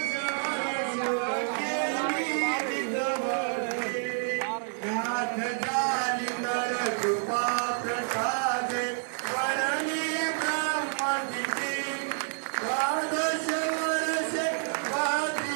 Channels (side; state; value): left; silent; 59 dB below the other